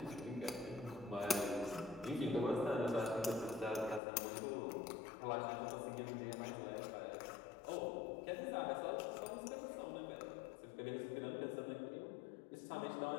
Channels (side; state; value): right; drops out; at 4.0 s